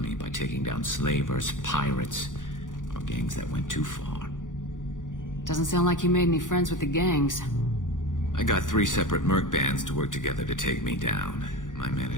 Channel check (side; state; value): right; late; 0.88 ms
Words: by taking down slavers, pirates, or gangs that went too far. Doesn't sound like you made any friends with the gangs. I got 3 separate merc bands to work together to take me down. My